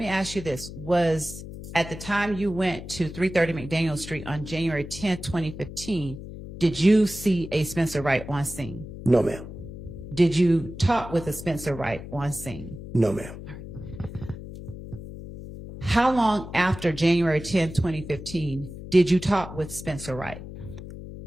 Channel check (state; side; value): noise; left; hum, 12 dB below the sound